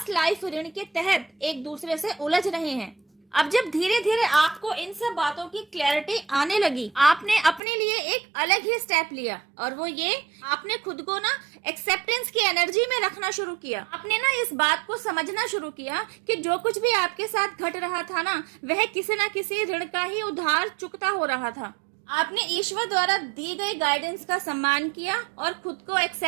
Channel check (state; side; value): drops out; left; at 7.6 s